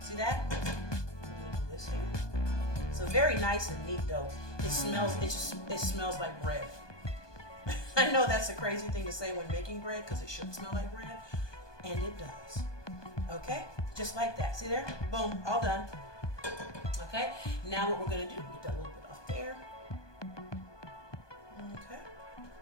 See that? I'm gonna do this here. So very nice and neat though. It smells like bread. I know that's a crazy thing to say when making bread because it should smell like bread, and it does. Okay? Just like that. See there? Boom. All done. Okay? Now what we're going to do, get that little bit off there. Okay.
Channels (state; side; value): late; right; 1.2 ms